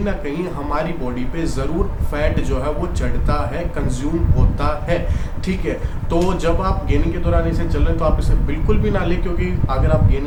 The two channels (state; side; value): identical; both; correlation 1.00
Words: ना कहीं हमारी बॉडी पे ज़रूर फैट जो है वो चढ़ता है, कंज्यूम होता है, ठीक है। तो जब आप गेनिंग के दौरान इसे चल रहे हैं तो आप इसे बिल्कुल भी ना लें, क्योंकि अगर आप